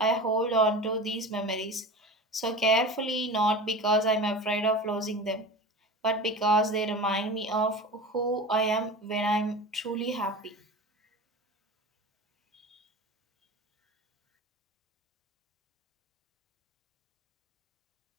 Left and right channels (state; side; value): normal; both; correlation 0.31